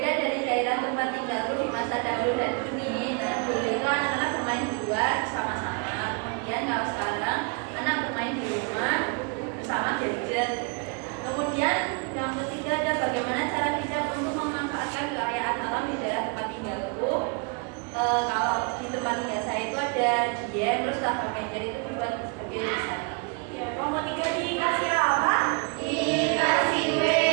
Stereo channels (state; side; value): quieter; left; 34.4 dB